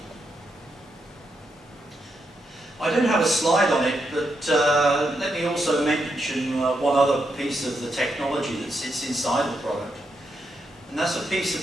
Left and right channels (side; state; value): both; normal; correlation 0.82